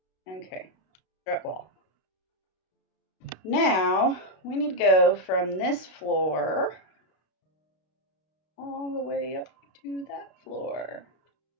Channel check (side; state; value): right; late; 32 ms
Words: Okay, strut wall. Now, we need to go from this floor all the way up to that floor.